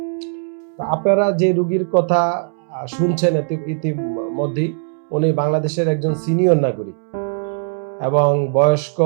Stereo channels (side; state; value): left; silent; 66 dB below the other